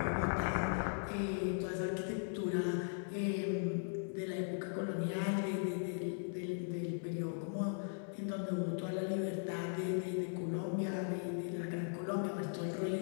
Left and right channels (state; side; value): silent; right; digital silence